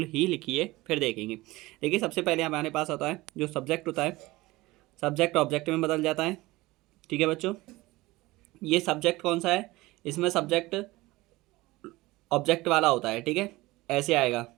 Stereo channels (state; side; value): quieter; left; 20.0 dB